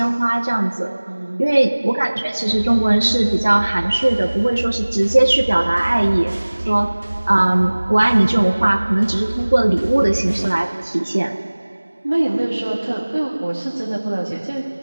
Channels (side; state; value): both; inverted; correlation -1.00